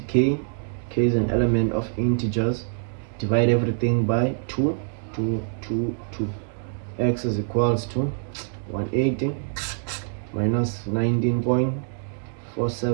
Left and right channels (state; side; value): silent; left; digital silence